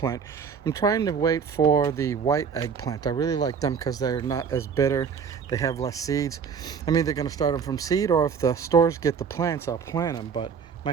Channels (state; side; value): quieter; left; 6.5 dB